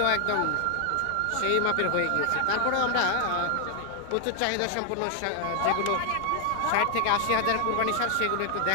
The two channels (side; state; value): both; different; correlation 0.00